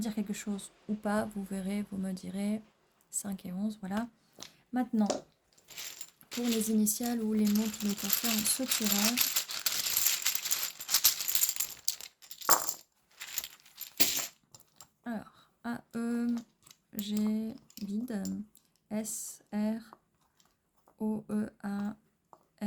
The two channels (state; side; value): identical; both; correlation 1.00